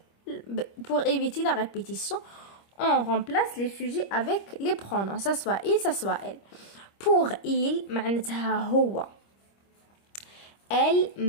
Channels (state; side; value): late; right; 25 ms